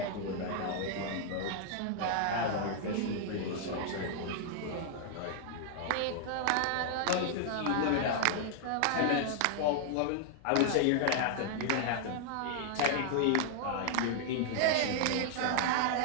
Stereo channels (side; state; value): both; different; correlation 0.00